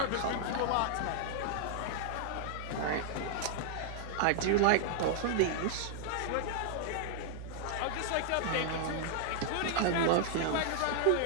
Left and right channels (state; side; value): different; both; correlation -0.01